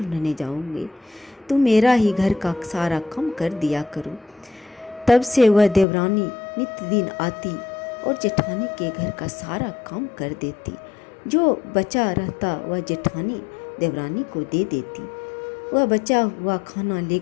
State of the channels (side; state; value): right; drops out; at 5.9 s